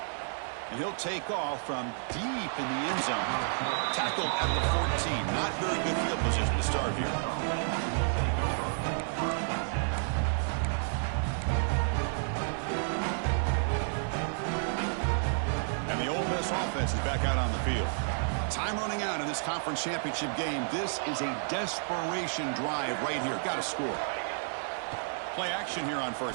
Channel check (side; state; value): left; silent; 57 dB below the other